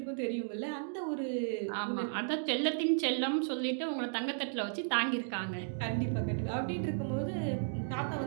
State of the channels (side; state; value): left; silent; digital silence